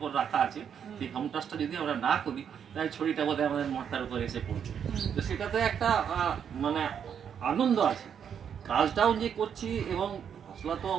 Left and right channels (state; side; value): quieter; left; 8.0 dB